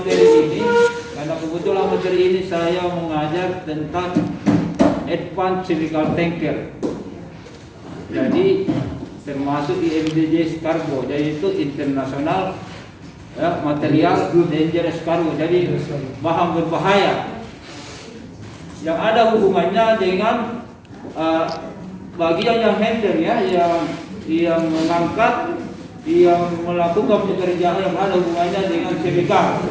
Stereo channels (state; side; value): identical; both; correlation 1.00